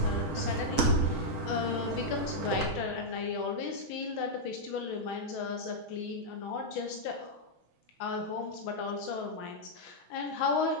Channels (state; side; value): late; right; 6.3 ms